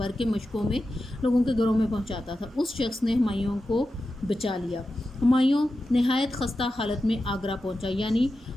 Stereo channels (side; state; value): both; normal; correlation 0.91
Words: کے مشکوں میں لوگوں کے گھروں میں پہنچاتا تھا، اس شخص نے ہمایوں کو بچا لیا۔ ہمایوں نہایت خستہ حالت میں آگرہ پہنچا، یعنی